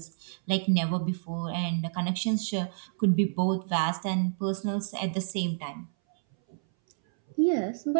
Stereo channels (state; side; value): silent; left; 59 dB below the other